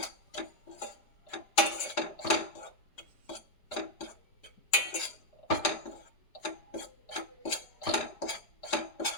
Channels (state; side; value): late; right; 5.0 ms